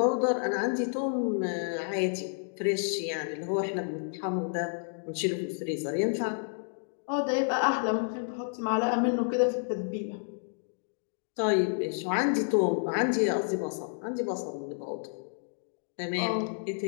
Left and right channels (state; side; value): silent; right; 58 dB below the other